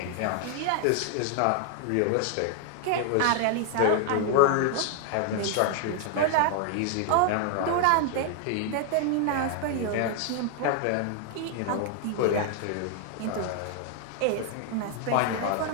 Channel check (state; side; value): different; both; correlation 0.00